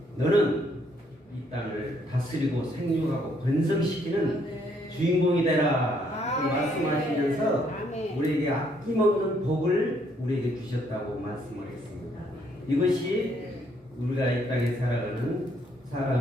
너는 이 땅을 다스리고 생육하고 번성시키는 주인공이 되라 말씀하시면서 우리에게 아낌없는 복을 우리에게 주셨다고 말씀을 했습니다. 이것이 우리가 이 땅에 살아가는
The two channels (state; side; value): normal; both; correlation 0.69